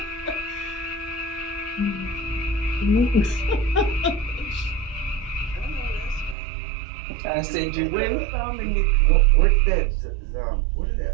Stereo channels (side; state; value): left; drops out; at 6.4 s